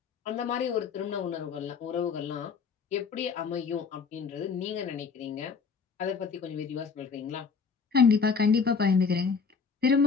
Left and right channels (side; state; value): right; quieter; 5.5 dB